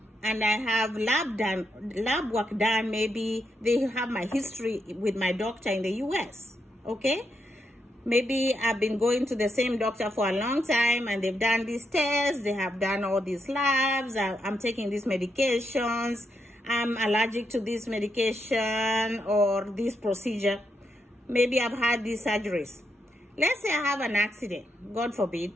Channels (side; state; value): both; normal; correlation 0.81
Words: and I have lab work done, maybe they have my history with my doctor in the US, okay? Maybe I've been going to the same doctor for a long time and they've done these tests, they have done all these labs, I'm taking these medications, I'm allergic to this medication or this procedure. Maybe I've had these surgeries. Let's say I have an accident, God forbid.